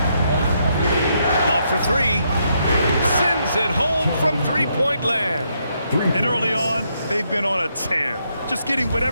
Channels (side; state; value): both; inverted; correlation -0.77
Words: Love for 3. Sends it home from three-point land. And early on, they've been on a tear. Just getting